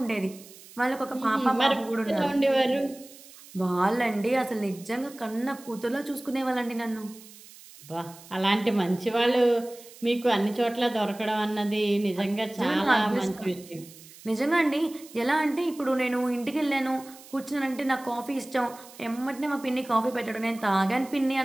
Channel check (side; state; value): right; noise; hiss, 20 dB below the sound